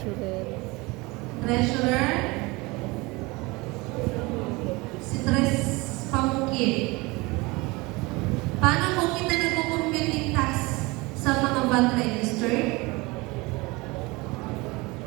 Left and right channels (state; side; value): quieter; left; 24.1 dB